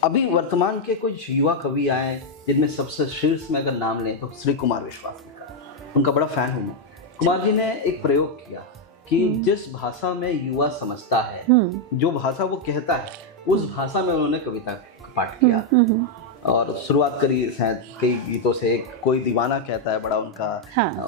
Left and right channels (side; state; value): both; normal; correlation 0.01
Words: अभी वर्तमान के कुछ युवा कवि आए जिनमें सबसे शीर्ष में अगर नाम लें तो श्री कुमार विश्वास जी का, उनका बड़ा फैन हूँ मैं। कुमार जी ने एक प्रयोग किया कि जिस भाषा में युवा समझता है, जो भाषा वो कहता है, उस भाषा में उन्होंने कविता का पाठ किया और शुरुआत करी शायद कई गीतों से। कोई दीवाना कहता है, बड़ा